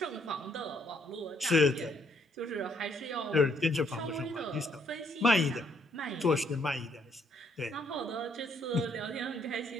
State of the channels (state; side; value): normal; both; correlation 0.69